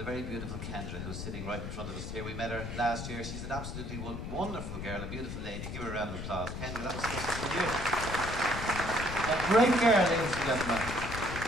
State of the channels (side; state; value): left; noise; rumble, 6 dB below the sound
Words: very beautiful Kendra, who's sitting right in front of us here. We met her last year. She's an absolutely wonderful girl, a beautiful lady. Give her a round of applause. Kendra, that was special for you. A great girl, ladies and gentlemen.